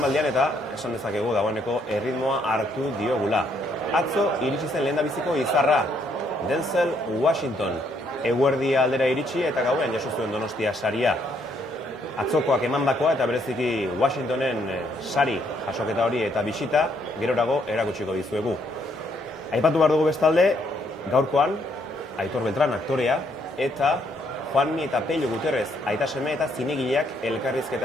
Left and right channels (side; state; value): both; normal; correlation 0.71